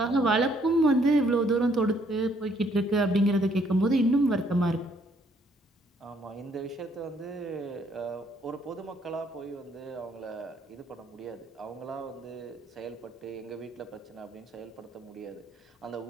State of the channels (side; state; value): both; normal; correlation 0.67